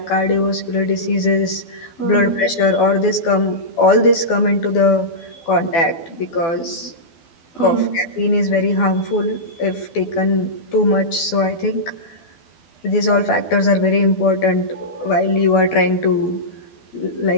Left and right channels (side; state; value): right; late; 12 ms